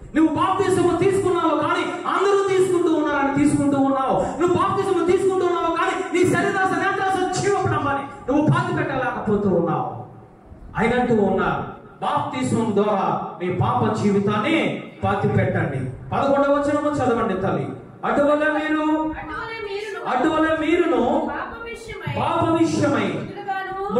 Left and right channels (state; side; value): identical; both; correlation 1.00